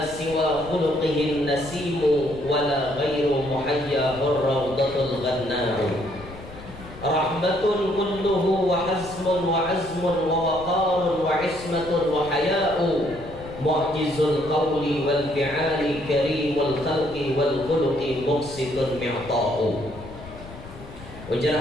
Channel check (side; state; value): left; noise; rumble, 16 dB below the sound